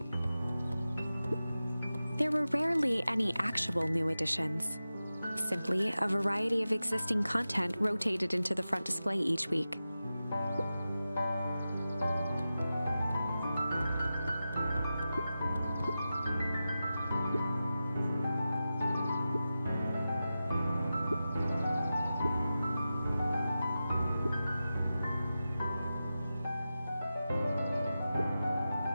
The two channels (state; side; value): inverted; both; correlation -0.93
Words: There were rarely any actual new additions. Simply a variety of existing content rotated into the front display each week.